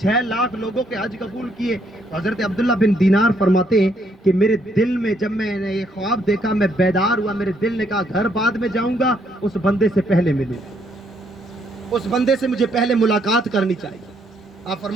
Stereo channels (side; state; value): both; normal; correlation 0.71